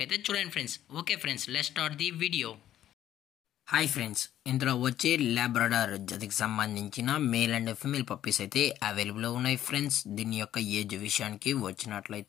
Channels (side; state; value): right; quieter; 11.9 dB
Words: అయితే చూడండి friends. Okay friends, let's start the video. Hi friends, ఇందులో వచ్చే లాబ్రడార్ జతకి సంబంధించిన మేల్ అండ్ ఫీమేల్ పప్పీస్ అయితే అవైలబుల్లో ఉన్నాయి ఫ్రెండ్స్. దీని యొక్క ఏజ్ విషయానికి